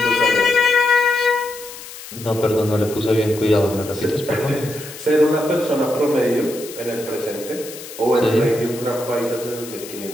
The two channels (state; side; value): noise; left; hiss, 14 dB below the sound